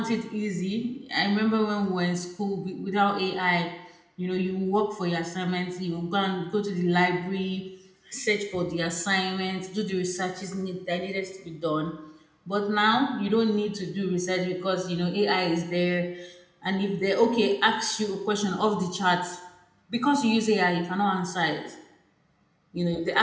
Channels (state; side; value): identical; both; correlation 1.00